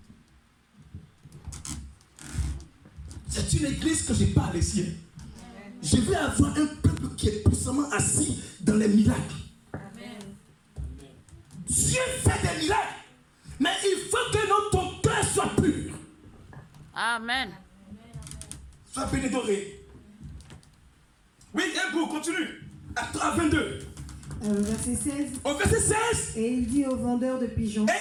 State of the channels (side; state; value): both; identical; correlation 1.00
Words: C'est une église que je parle ici. Je veux avoir un peuple qui est puissamment assis dans les miracles. Dieu fait des miracles, mais il faut que ton cœur soit pur. Amen. Sois bénédoré. Oui, un goût, continue. À 22. Verset 16. Au verset 16. Et il dit aux vendeurs de pigeons.